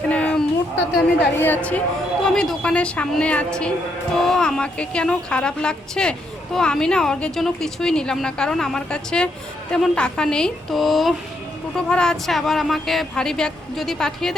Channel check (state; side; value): normal; both; correlation 0.76